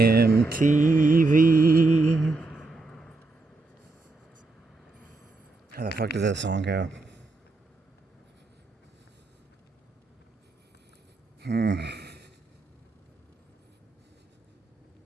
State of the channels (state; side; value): quieter; left; 3.4 dB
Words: How the fuck does that song go? You